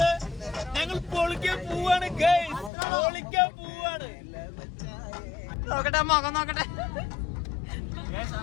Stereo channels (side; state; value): right; drops out; at 2.7 s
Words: ഞങ്ങൾ പൊളിക്കാൻ പോവാണ് ഗൈസ്, പൊളിക്കാൻ പോവാണ്. നോക്കട്ടെ മുഖം നോക്കട്ടെ.